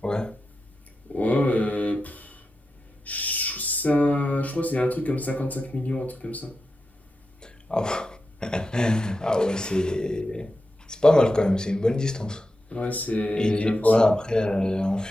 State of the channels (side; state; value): both; normal; correlation 0.90